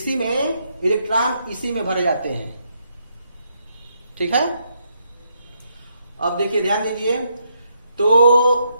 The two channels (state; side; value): inverted; both; correlation -0.76